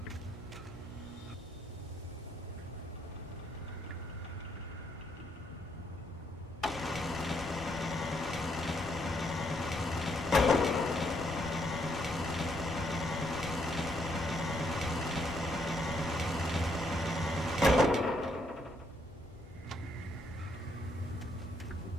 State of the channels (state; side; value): normal; both; correlation 0.74